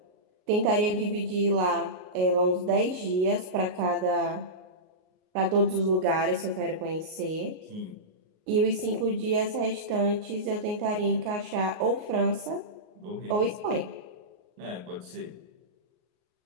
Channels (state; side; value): late; left; 38 ms